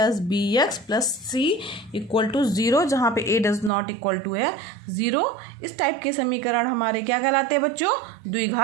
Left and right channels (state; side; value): drops out; left; at 3.7 s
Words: B X plus C equal to 0, जहाँ पे a does not equal to है 0। इस टाइप के समीकरण हमारे क्या कहलाते हैं बच्चों?